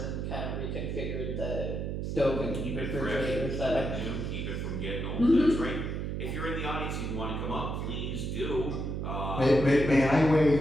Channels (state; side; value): noise; right; hum, 3 dB below the sound